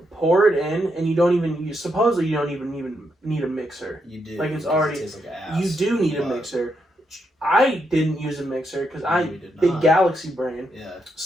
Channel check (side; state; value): both; normal; correlation 0.81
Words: pour it in, and supposedly you don't even need a mixer. You do. Like, it's already. It tastes like ass, you do need a mixer. I didn't use a mixer because big galaxy brain. Yeah.